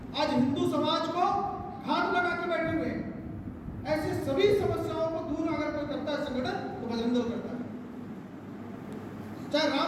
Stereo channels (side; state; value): both; identical; correlation 1.00